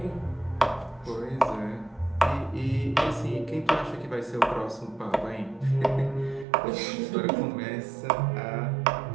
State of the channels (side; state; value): left; drops out; at 6.5 s